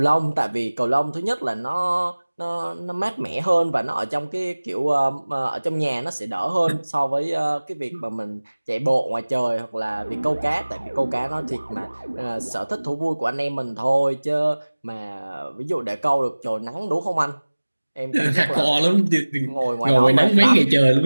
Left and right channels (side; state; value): both; inverted; correlation -1.00